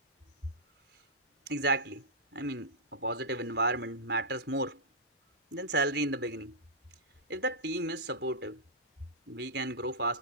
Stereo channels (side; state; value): both; normal; correlation -0.13